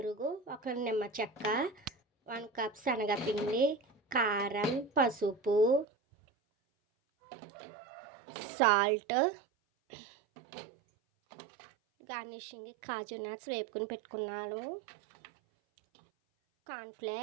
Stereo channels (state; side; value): drops out; left; at 5.9 s